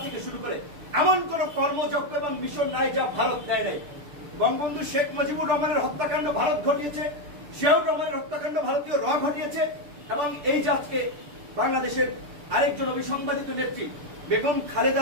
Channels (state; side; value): late; left; 6.8 ms